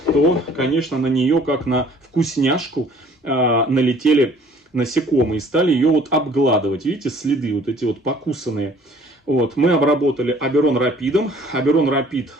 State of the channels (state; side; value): normal; both; correlation 0.55